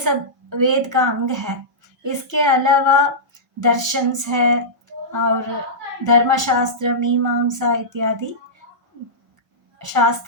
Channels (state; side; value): normal; both; correlation -0.15